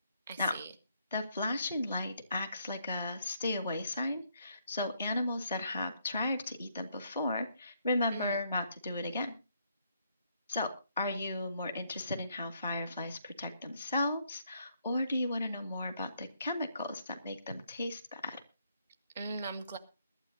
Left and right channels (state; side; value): inverted; both; correlation -0.72